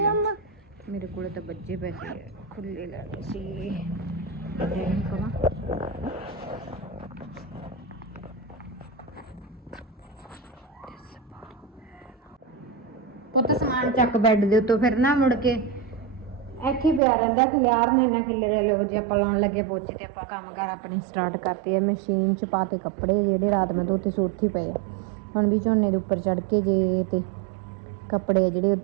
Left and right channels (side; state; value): left; drops out; at 17.0 s